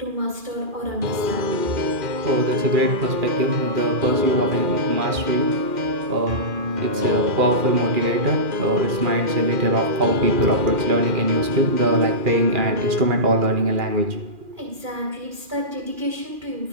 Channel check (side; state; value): left; late; 2.4 ms